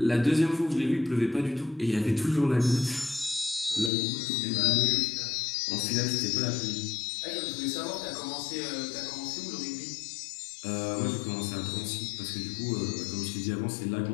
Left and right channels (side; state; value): right; drops out; at 3.9 s